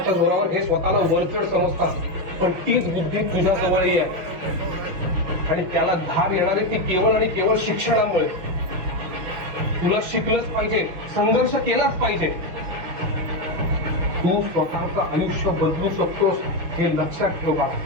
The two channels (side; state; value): left; late; 6.1 ms